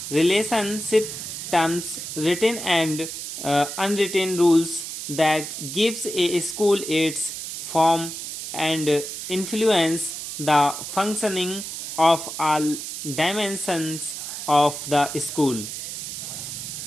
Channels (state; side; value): noise; right; hiss, 7 dB below the sound